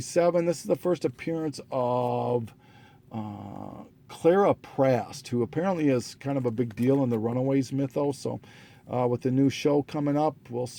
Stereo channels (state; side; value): identical; both; correlation 1.00